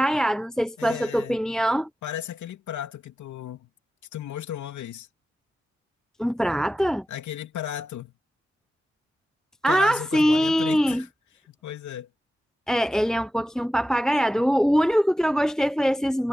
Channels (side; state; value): both; normal; correlation 0.93